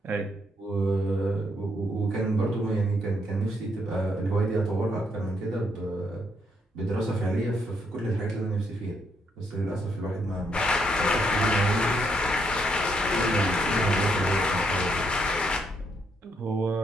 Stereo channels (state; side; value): normal; both; correlation 0.75